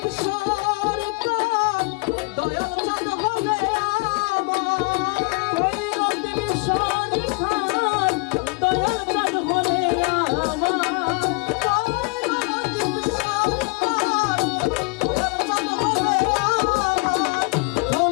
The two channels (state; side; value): quieter; right; 29.1 dB